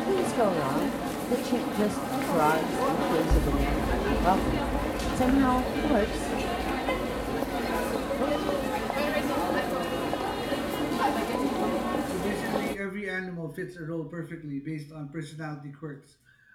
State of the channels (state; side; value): identical; both; correlation 1.00